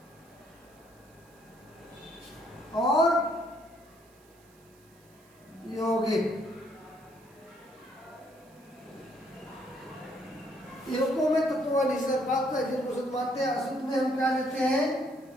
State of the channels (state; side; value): noise; right; hiss, 30 dB below the sound